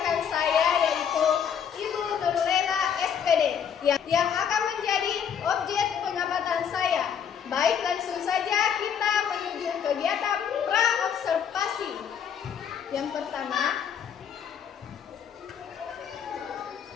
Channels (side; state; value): right; quieter; 7.9 dB